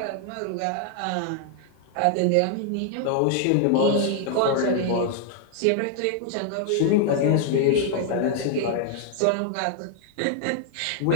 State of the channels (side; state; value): both; different; correlation 0.00